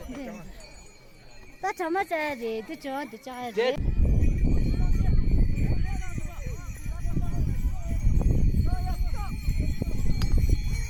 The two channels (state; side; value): identical; both; correlation 1.00